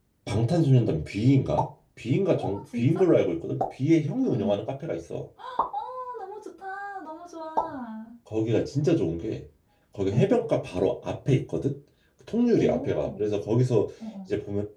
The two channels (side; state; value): both; identical; correlation 1.00